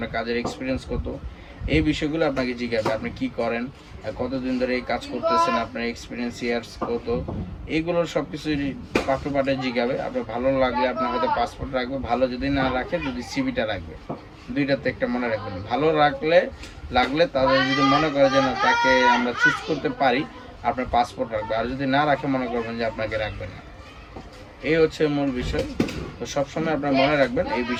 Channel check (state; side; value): identical; both; correlation 1.00